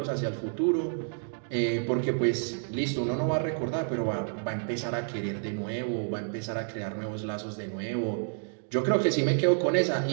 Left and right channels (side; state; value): left; silent; digital silence